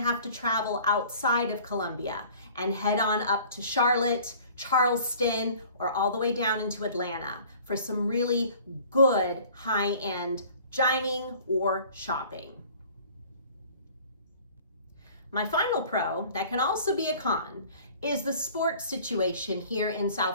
to travel outside of Columbia and head on up to Charlotte, Charleston, or all the way down into Atlanta for some really good high-end dining or shopping. My final pro that can also be a con is the sports situation here in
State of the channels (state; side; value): inverted; both; correlation -0.49